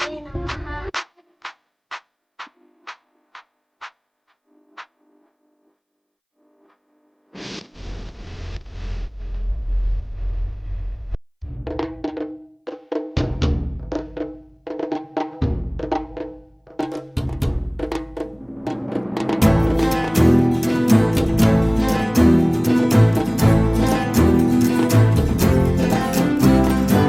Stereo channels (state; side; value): identical; both; correlation 1.00